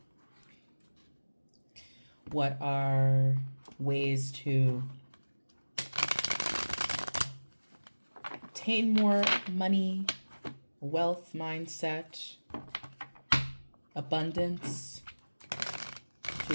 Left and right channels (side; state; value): both; inverted; correlation -1.00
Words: What are ways to obtain more money, wealth mindset, abundance,